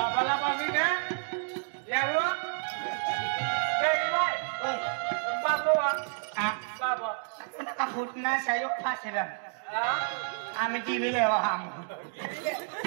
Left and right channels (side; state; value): left; silent; digital silence